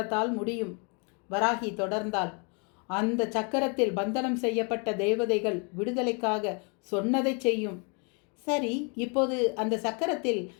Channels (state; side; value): quieter; right; 34.7 dB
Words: முடியும். வராகி தொடர்ந்தாள். அந்த சக்கரத்தில் பந்தனம் செய்யப்பட்ட தேவதைகள் விடுதலைக்காக சொன்னதை செய்யும். சரி, இப்போது அந்த சக்கரத்தில்